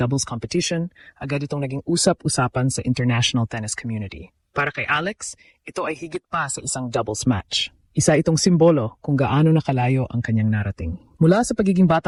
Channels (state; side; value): identical; both; correlation 1.00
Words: competition, agad itong naging usap-usapan sa international tennis community. Para kay Alex, ito ay higit pa sa isang doubles match. Isa itong simbolo kung gaano nakalayo ang kanyang narating. Mula sa pagiging